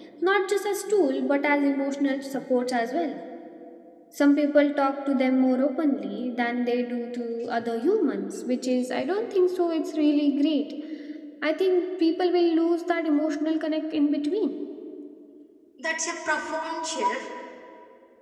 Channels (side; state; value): both; identical; correlation 1.00